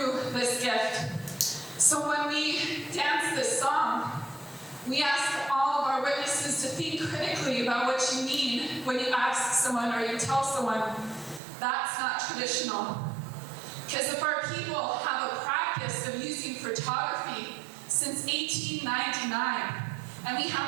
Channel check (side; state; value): left; drops out; at 11.4 s